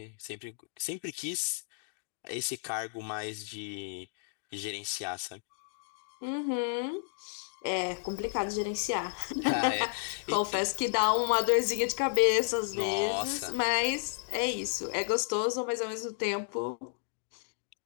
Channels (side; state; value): right; silent; digital silence